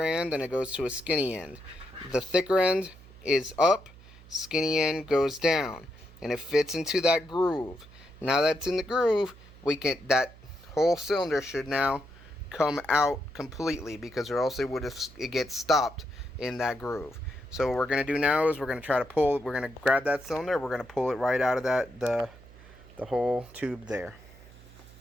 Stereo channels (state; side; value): noise; right; hum, 21 dB below the sound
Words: and it goes to a skinny end. The thicker end is up, skinny end goes down, and it fits into that groove. Now that's in the groove, that whole cylinder should now come out completely, because or else it gets stopped in that groove. So what we're going to do now is we're going to try to pull, we're going to grab that cylinder, we're going to pull it right out of the the whole tube there.